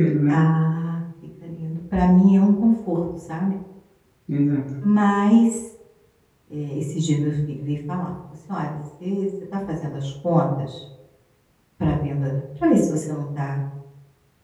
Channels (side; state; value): both; identical; correlation 1.00